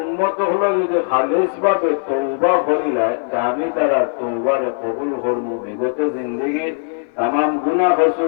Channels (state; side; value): silent; right; 58 dB below the other